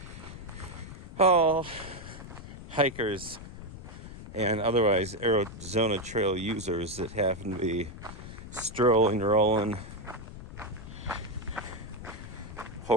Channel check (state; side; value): noise; left; rumble, 12 dB below the sound